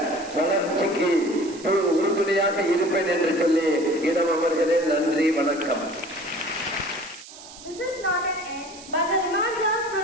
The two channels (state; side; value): noise; right; hiss, 17 dB below the sound